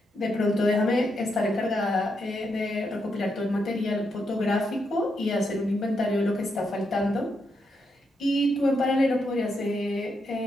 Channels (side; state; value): both; normal; correlation 0.81